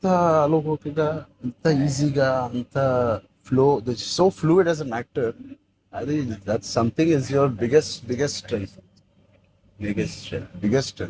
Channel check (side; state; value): both; identical; correlation 1.00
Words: అలోకిగా, అంత ఈజీగా, అంత flow, so fluid as an actor. అది that something is your biggest